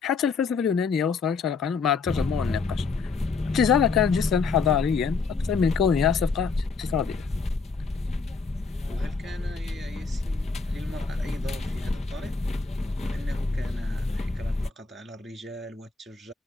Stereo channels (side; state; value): right; quieter; 4.8 dB